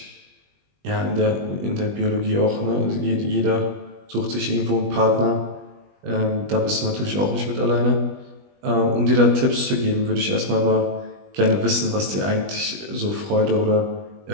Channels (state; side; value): late; left; 20 ms